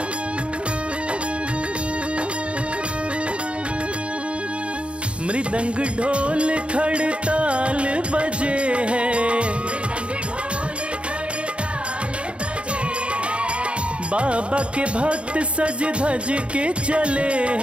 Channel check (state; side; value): late; left; 0.059 ms